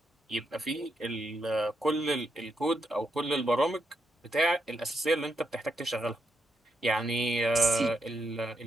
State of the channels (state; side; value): normal; both; correlation 0.81